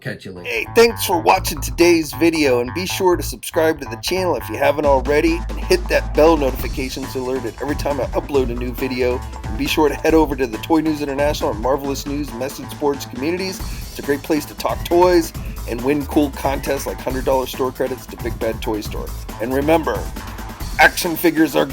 you later. Hey, thanks for watching today's video, and be sure to subscribe to the channel if you haven't already, and hit that bell notification so alerted every time I upload a new video. And be sure to head over to the Toy News International and Marvelous News message boards communities. It's a great place to talk toys and win cool contests like $100 store credits to Big Bad Toy Store. And remember, action figures are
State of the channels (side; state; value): both; identical; correlation 1.00